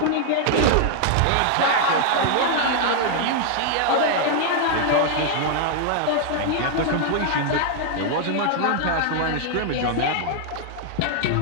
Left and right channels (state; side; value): different; both; correlation 0.00